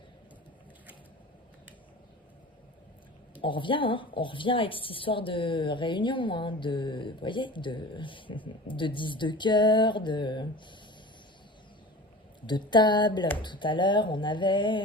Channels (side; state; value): both; normal; correlation 0.36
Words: On revient avec cette histoire de réunion, hein, vous voyez, de 10 de cœur, de table. Tout à l'heure, on